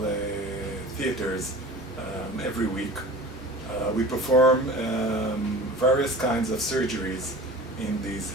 theaters every week. We perform various kinds of surgeries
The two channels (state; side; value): normal; both; correlation 0.38